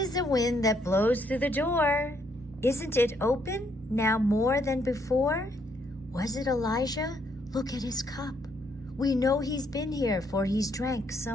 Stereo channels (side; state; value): right; noise; hum, 24 dB below the sound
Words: the wind that blows through the door. Isn't it open now more than before? Was it Elijah? Look at his cup. We know he's been here, for he's drank